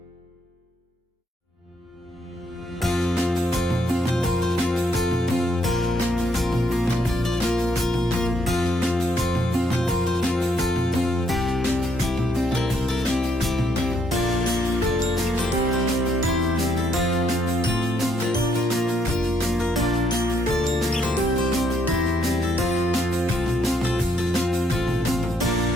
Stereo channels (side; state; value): both; normal; correlation 0.72